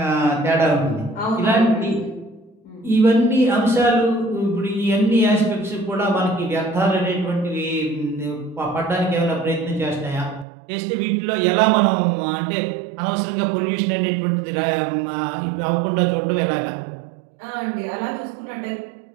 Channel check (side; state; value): left; drops out; at 10.5 s